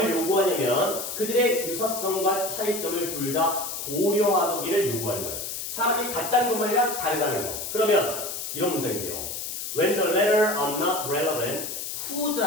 요구하냐면 그들의 유사성과 차이점을 둘 다 고려하기를 요구하는 거예요. 사람이 같다는 것만 아니라 다르다는 거. 그러면 이런 문장인데요. When the latter are not relevant,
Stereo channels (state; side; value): noise; left; hiss, 6 dB below the sound